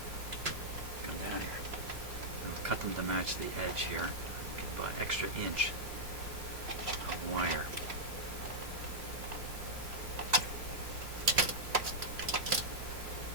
come down here. I'll cut them to match the edge here. Give an extra inch of wire.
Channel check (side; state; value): left; late; 3.1 ms